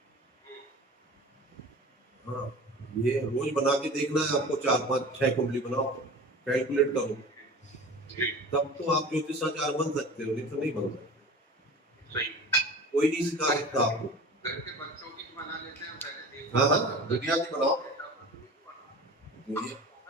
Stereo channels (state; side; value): normal; both; correlation 0.37